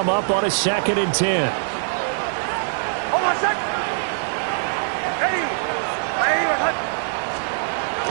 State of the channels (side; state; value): left; silent; digital silence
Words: up on a 2nd and 10. Hold on a sec. Ready.